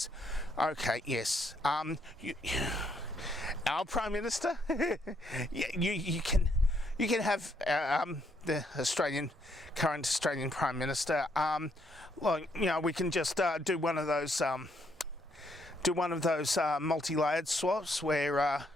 Okay, yes. Our Prime Minister? you can have the current Australian Prime Minister. We can just do one of those multi-layered swaps where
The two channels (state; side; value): normal; both; correlation 0.72